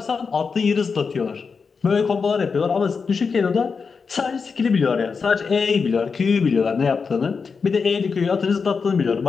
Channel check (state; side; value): quieter; right; 5.2 dB